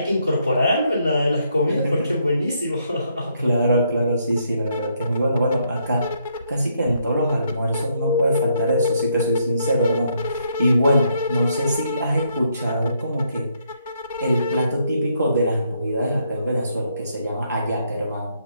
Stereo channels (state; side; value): inverted; both; correlation -0.74